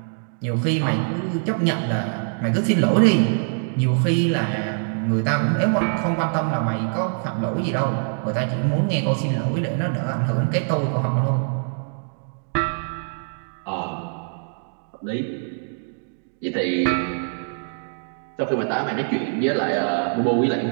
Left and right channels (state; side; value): silent; left; digital silence